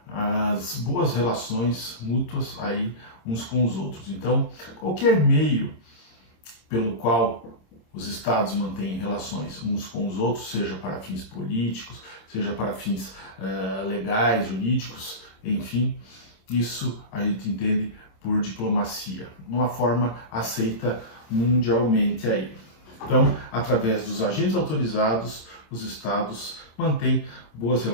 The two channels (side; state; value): right; late; 26 ms